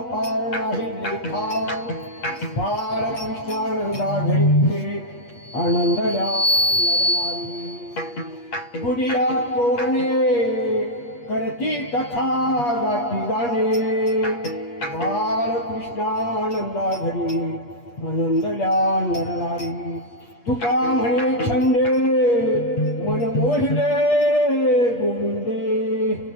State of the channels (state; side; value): late; right; 8.4 ms